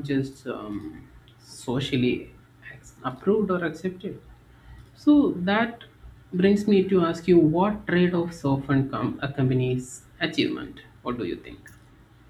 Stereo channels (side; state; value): both; identical; correlation 1.00